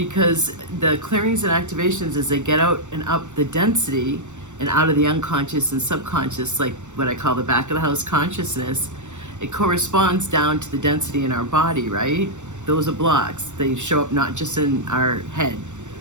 the clearings and activations, as they get out and up the density and out of the unconscious and subconscious, like what I call the back of the house consciousness, it corresponds down to the density in our body, right? Those are blocks. They show up not just in our head,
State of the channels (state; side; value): late; left; 0.84 ms